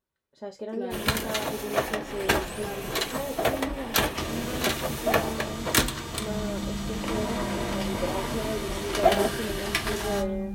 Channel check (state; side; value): identical; both; correlation 1.00